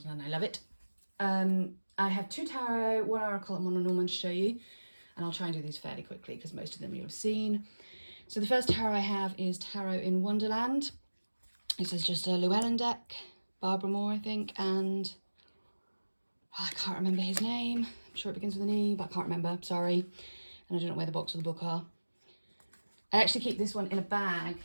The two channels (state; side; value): inverted; both; correlation -1.00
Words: and I love it. I have 2 tarot, 1 oracle and 1 Lenormand to show you, and I'll try and do these fairly quickly because most of them you'll have seen. So the first tarot I have is Tarot in Wonderland. This is just a Llewellyn deck, Barbara Moore, I think, and I can't remember his name. I'm sure it begins with an E, but I can't remember, sorry. And I don't know where the box of the book are. I actually keep this one in a bag